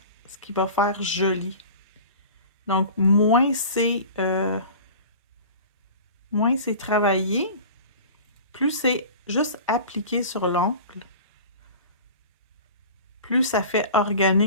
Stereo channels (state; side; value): inverted; both; correlation -0.39